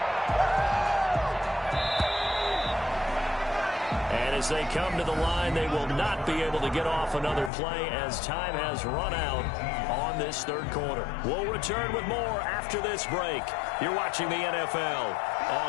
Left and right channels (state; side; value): drops out; right; at 7.5 s